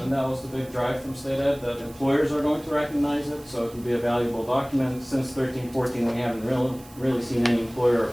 that was the big drive from state ed, that employers are going to recognize it, so it can be a valuable document. Since 13-14, we haven't really seen any employer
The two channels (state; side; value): noise; right; hiss, 23 dB below the sound